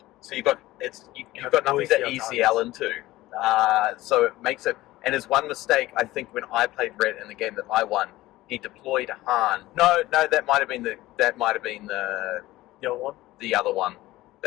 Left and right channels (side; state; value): right; quieter; 17.3 dB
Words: so you've got nothing to ECL into. So it makes it. And his one mistake, I think, when I played Red in the game that I won, he deployed Han. No, that might have been the The other one. The other one.